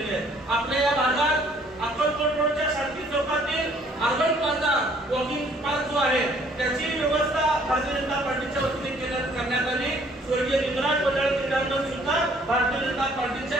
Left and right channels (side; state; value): both; normal; correlation 0.60